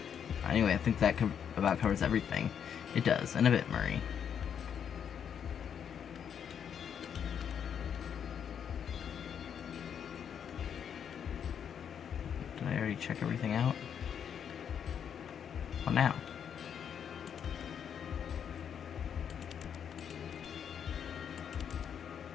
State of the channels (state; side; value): quieter; right; 8.1 dB